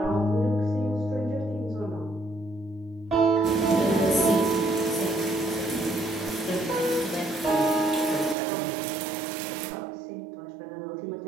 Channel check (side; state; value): left; drops out; at 8.3 s